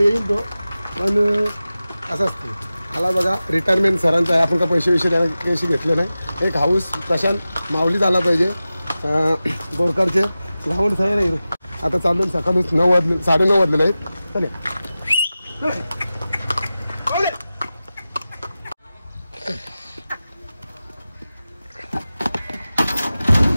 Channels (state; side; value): inverted; both; correlation -0.95